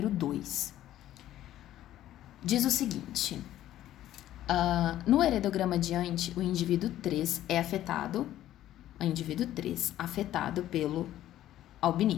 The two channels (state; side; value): quieter; right; 13.1 dB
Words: 2. Diz o seguinte, no heredograma adiante, o indivíduo 3 é afetado, afetado pelo